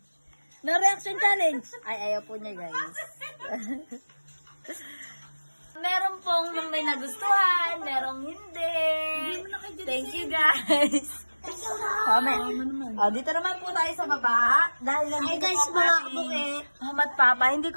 No reaction challenge. Ay, ayaw po niya, guys. Meron pong may nagustuhan, merong hindi. Thank you, guys. Dito naman po tayo sa baba. Dahil nandito guys, po mga ang aking kabuke. mama at papa. Hindi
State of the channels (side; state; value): both; inverted; correlation -1.00